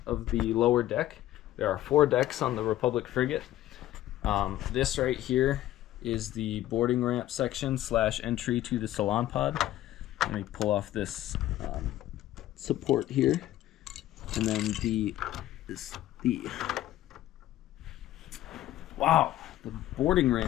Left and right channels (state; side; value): quieter; right; 14.2 dB